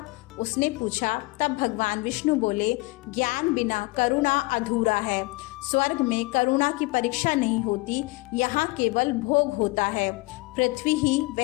उसने पूछा। तब भगवान विष्णु बोले, ज्ञान बिना करुणा अधूरा है। स्वर्ग में करुणा की परीक्षा नहीं होती, यहाँ केवल भोग होता है। पृथ्वी ही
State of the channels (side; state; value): right; quieter; 23.3 dB